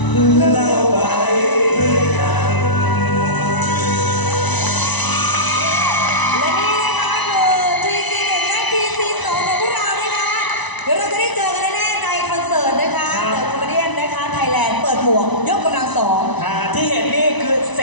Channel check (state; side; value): late; right; 1.0 ms